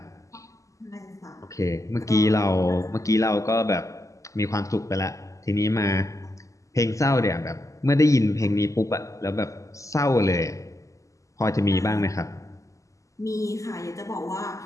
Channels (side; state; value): right; late; 0.16 ms